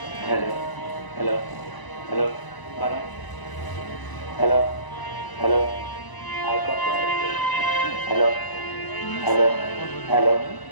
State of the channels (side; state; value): right; late; 1.0 ms